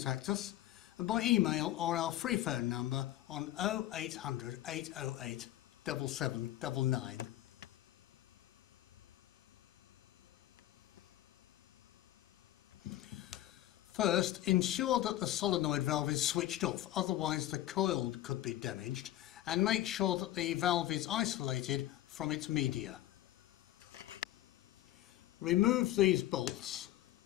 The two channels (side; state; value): right; quieter; 14.2 dB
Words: us by email or our free phone number on 0800 808 7799. First, ensure that the solenoid valve is switched off, otherwise the coil could be damaged, and make sure that the valve is isolated from its media. Remove these bolts